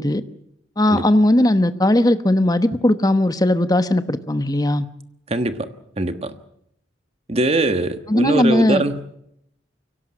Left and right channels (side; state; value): both; normal; correlation 0.80